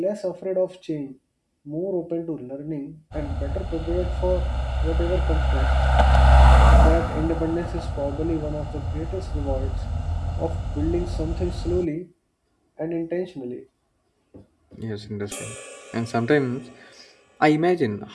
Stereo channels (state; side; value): identical; both; correlation 1.00